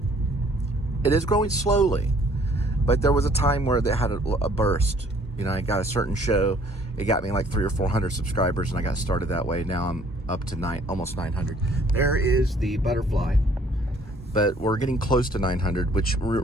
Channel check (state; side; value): normal; both; correlation 0.59